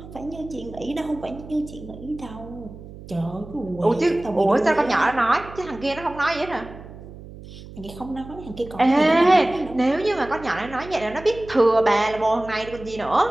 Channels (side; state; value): right; noise; hum, 16 dB below the sound